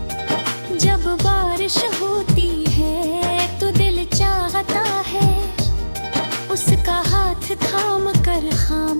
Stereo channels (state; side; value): inverted; both; correlation -1.00